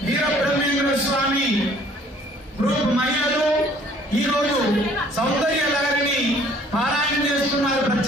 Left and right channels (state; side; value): normal; both; correlation 0.57